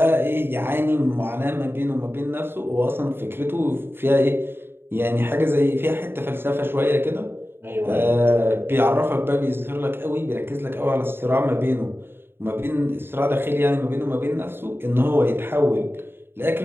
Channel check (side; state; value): left; late; 0.11 ms